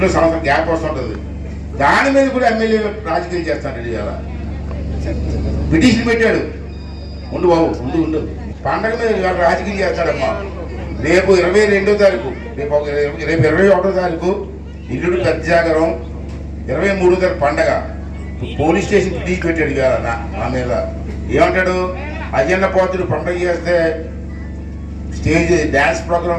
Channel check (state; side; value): identical; both; correlation 1.00